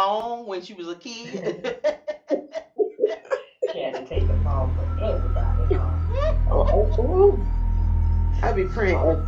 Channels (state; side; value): identical; both; correlation 1.00